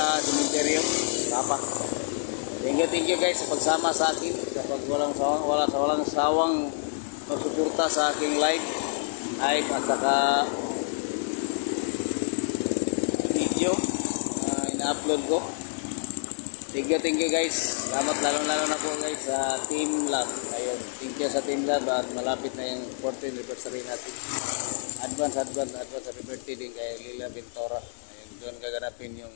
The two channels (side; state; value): right; silent; 60 dB below the other